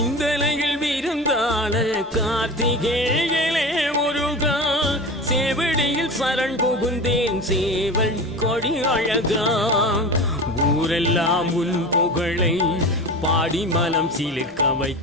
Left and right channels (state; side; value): normal; both; correlation 0.31